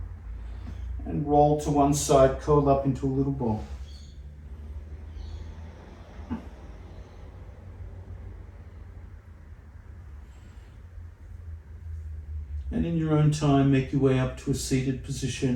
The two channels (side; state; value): both; identical; correlation 1.00